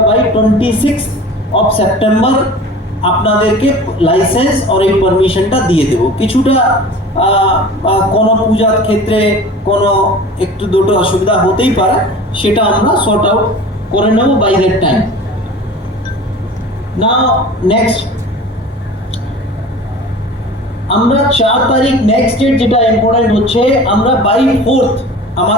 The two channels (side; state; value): both; normal; correlation 0.40